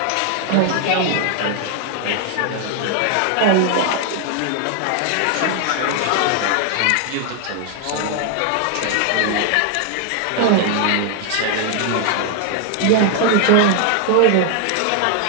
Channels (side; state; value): both; different; correlation 0.00